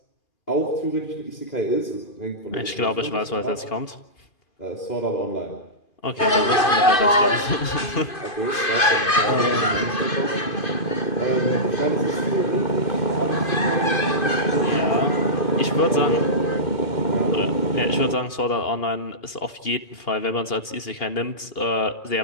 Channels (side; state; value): right; late; 2.6 ms